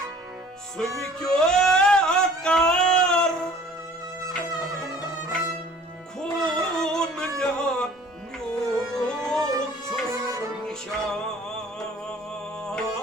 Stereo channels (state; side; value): normal; both; correlation 0.51